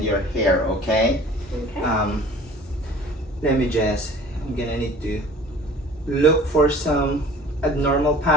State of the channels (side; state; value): both; normal; correlation 0.47